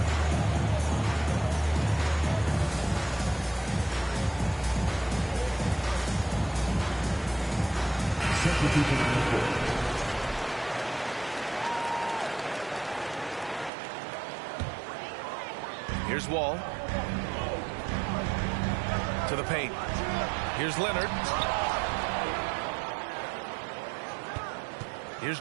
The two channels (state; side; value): drops out; left; at 13.7 s